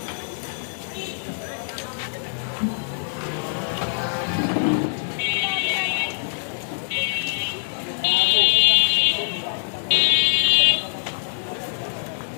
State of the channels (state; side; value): silent; right; digital silence